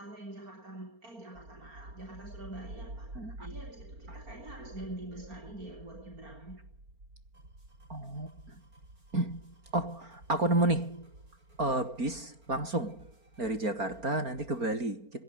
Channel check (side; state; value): left; late; 4.4 ms